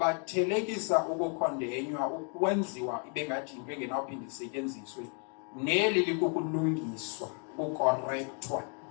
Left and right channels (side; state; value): right; quieter; 39.4 dB